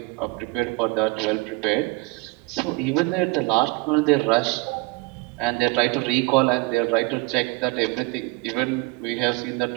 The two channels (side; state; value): left; quieter; 24.8 dB